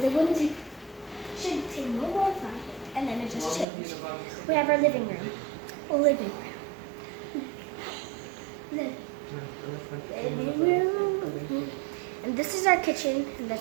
windows should take no more time, and then it just changed. We have our living room. Living room. And this is our kitchen, and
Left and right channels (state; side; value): drops out; left; at 3.7 s